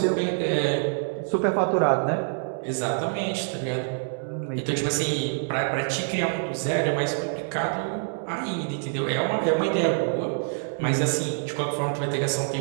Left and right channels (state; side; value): silent; left; 61 dB below the other